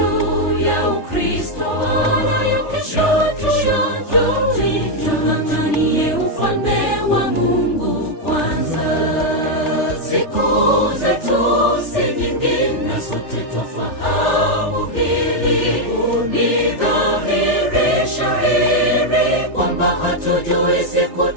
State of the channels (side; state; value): right; late; 3.4 ms